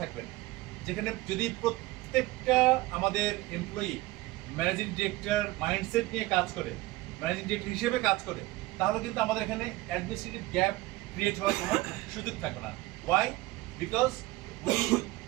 না, যেখানে যদি প্রত্যেকটা আমাদের এমপ্লয়ি ম্যানেজিং ডিরেক্টর মাইন্ডসেট নিয়ে কাজ করে, ম্যানেজিং ডিরেক্টর হিসেবে কাজ করে, তাহলে কিন্তু আমাদের এখানে অ্যাডমিনিস্ট্রেটিভ গ্যাপ ক্রিয়েট হওয়ার কোনো সুযোগ থাকবে না। Why? Because we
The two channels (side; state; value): left; quieter; 19.4 dB